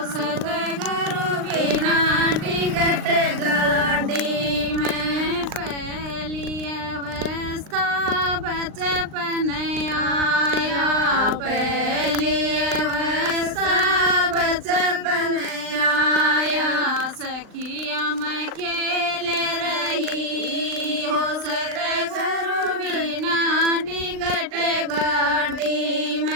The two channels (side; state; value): left; late; 39 ms